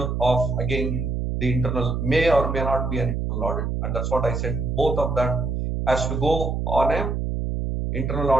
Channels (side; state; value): right; noise; hum, 1 dB below the sound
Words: of, again, the internal, may or may not be an internal audit. And that's what I said. Both of that has to go on a internal